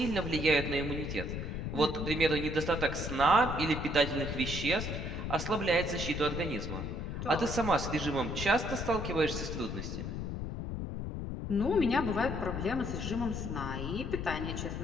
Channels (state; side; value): noise; left; rumble, 4 dB below the sound